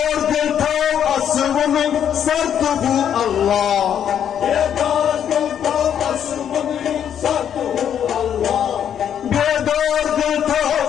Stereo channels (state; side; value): quieter; right; 9.1 dB